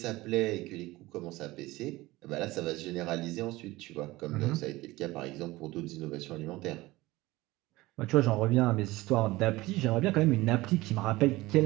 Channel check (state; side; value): quieter; left; 19.5 dB